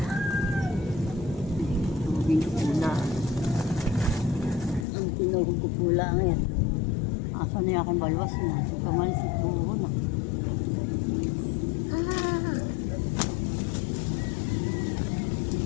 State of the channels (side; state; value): right; drops out; at 4.9 s